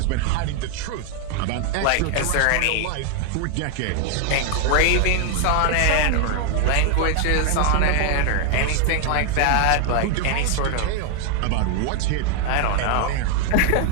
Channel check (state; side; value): different; both; correlation 0.00